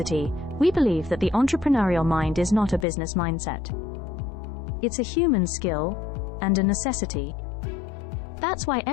we believe that the entrepreneurial mind is not a business mindset. It's a human skill and a necessity. That's why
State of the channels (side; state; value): right; drops out; at 2.9 s